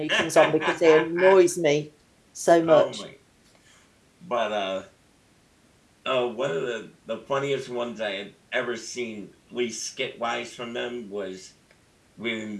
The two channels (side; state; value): both; identical; correlation 1.00